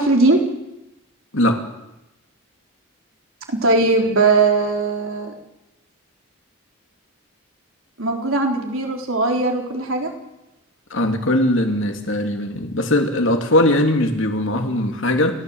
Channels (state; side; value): normal; both; correlation 0.14